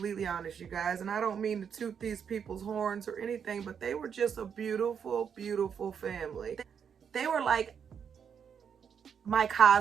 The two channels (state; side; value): quieter; left; 7.4 dB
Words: honest, you guys, and I don't mean to toot these people's horns or anything, but they were just a beautiful family. They were like my